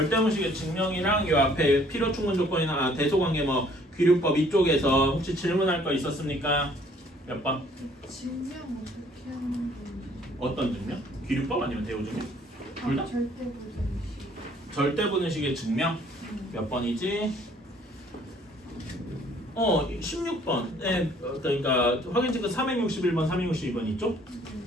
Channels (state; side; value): normal; both; correlation 0.60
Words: 증명이랑 요 앞에 필요 충분 조건이나 대소관계 귀류법 이쪽에서 혹시 질문할 거 있었습니까? 몇 번? 증명 어떻게 하는 건지. 어떤 증명? 귀류법 아니면 대우 증명? 둘 다? 절대부등식. 절대부등식의 증명? 몇 번이지? 16번. 네, 그러니까 확인 체크 361번, 362번 있죠?